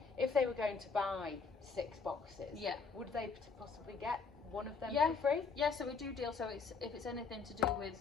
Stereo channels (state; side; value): quieter; right; 5.0 dB